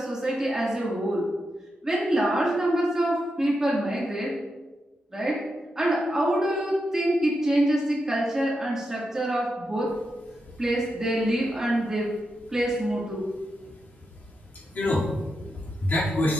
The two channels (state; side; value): normal; both; correlation 0.86